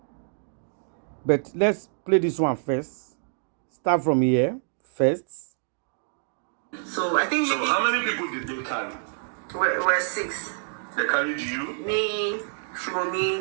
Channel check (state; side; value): silent; left; digital silence